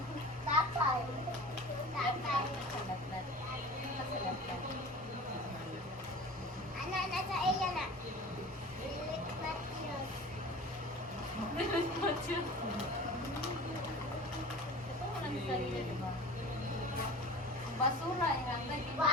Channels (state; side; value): normal; both; correlation 0.38